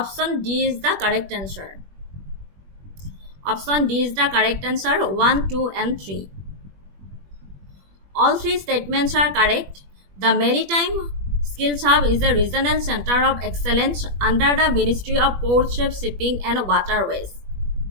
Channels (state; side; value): late; left; 21 ms